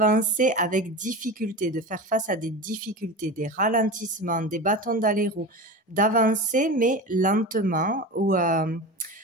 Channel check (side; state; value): both; normal; correlation 0.28